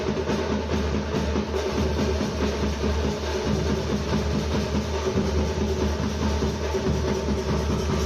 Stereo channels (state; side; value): identical; both; correlation 1.00